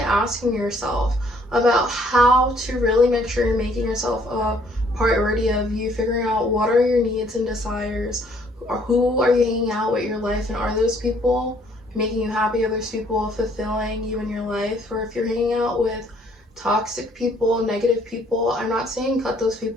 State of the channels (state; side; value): normal; both; correlation 0.63